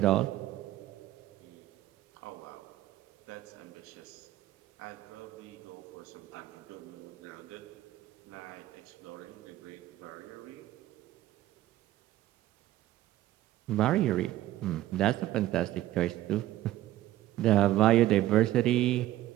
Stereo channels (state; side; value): quieter; left; 14.6 dB